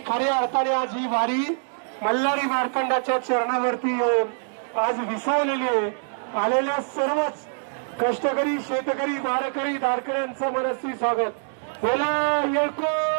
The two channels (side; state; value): left; silent; digital silence